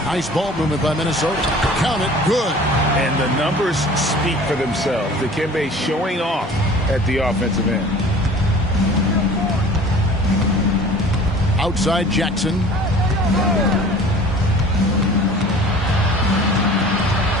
Nice ball movement by Minnesota. Count it. Good. And the numbers speak for themselves. Dikembe showing off at the offensive end. Outside Jackson.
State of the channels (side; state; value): both; normal; correlation 0.45